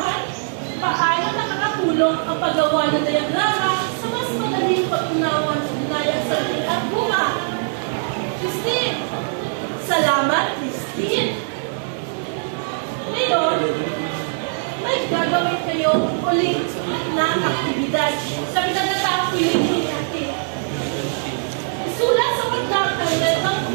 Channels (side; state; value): left; silent; digital silence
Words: paano nakakatulong ang paggawa ng diagrama sa mas madaling pag-unawa ng ugnayang sandigan at bunga? Christine. Salamat, Christine. Ngayon, may gagawin kayo ulit na aktibidad sa pinagkataang piling natin. Isulat sa pagdang ang lemang